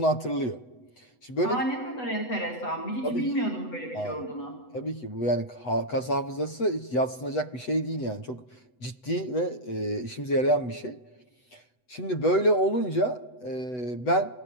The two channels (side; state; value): right; late; 8.0 ms